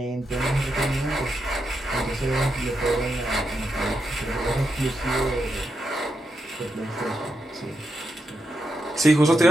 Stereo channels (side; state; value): both; normal; correlation 0.85